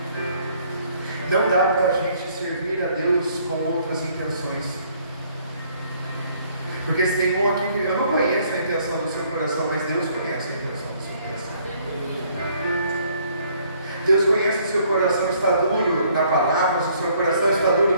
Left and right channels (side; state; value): both; inverted; correlation -0.63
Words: não dá para a gente servir a Deus com outras intenções. Porque se tem um aqui que eu não conheço a intenção do seu coração, mas Deus conhece a intenção do seu coração. Deus conhece o seu coração está duro na palavra, se o seu coração está